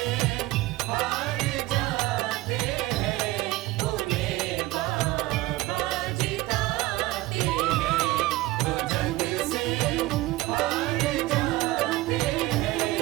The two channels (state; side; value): quieter; left; 18.5 dB